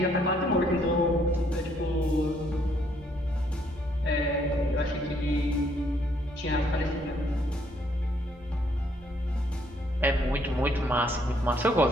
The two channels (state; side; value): normal; both; correlation 0.69